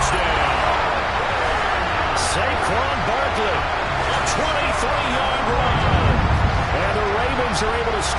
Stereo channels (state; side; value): identical; both; correlation 1.00